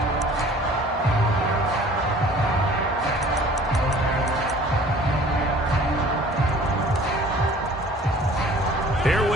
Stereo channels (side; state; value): both; normal; correlation 0.50